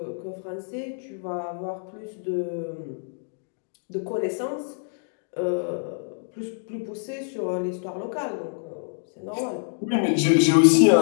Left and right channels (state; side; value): silent; right; digital silence